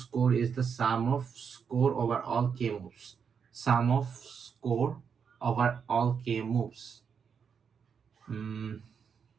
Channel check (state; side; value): quieter; left; 6.7 dB